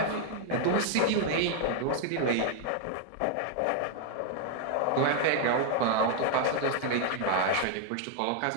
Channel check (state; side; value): different; both; correlation 0.00